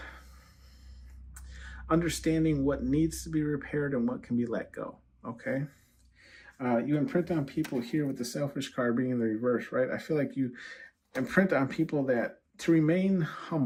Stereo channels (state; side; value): identical; both; correlation 1.00